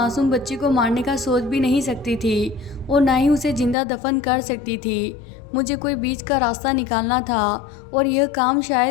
बच्ची को मारने का सोच भी नहीं सकती थी और ना ही उसे जिंदा दफन कर सकती थी। मुझे कोई बीच का रास्ता निकालना था और यह काम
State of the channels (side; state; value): right; drops out; at 3.8 s